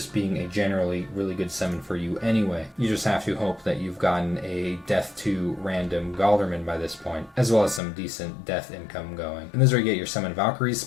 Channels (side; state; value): right; drops out; at 7.8 s